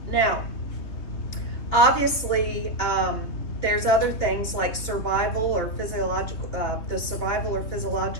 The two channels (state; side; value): late; right; 2.9 ms